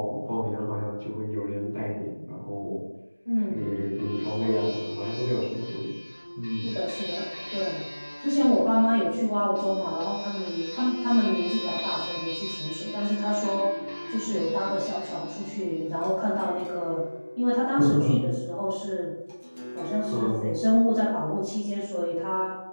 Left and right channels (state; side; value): inverted; both; correlation -1.00